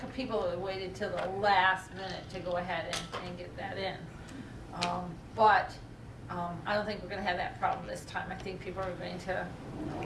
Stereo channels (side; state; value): both; identical; correlation 1.00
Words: of people that waited till the last minute to go ahead and get that in. But I don't think we're gonna have that problem this time. I think people are going to